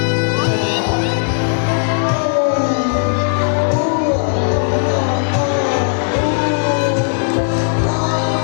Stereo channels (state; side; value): silent; right; 64 dB below the other